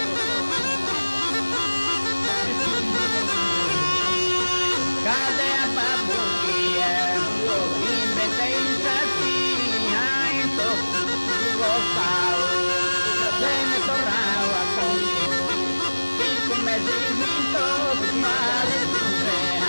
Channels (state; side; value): inverted; both; correlation -1.00